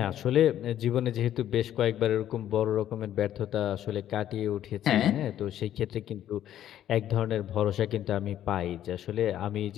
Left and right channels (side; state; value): right; quieter; 11.5 dB